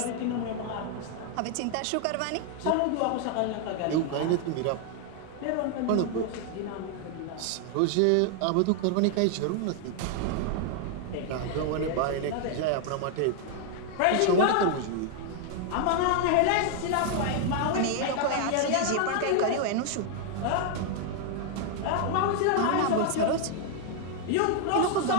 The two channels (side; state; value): both; different; correlation 0.00